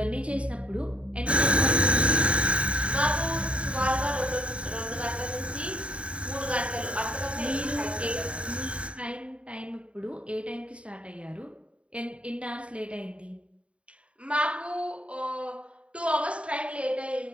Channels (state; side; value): late; left; 0.062 ms